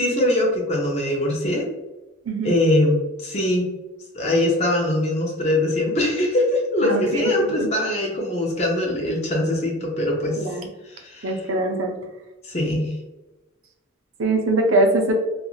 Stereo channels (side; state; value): both; normal; correlation 0.36